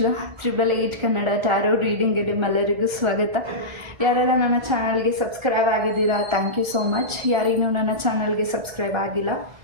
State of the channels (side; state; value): left; late; 1.4 ms